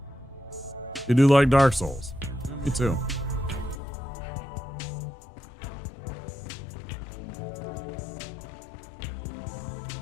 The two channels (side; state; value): right; drops out; at 3.8 s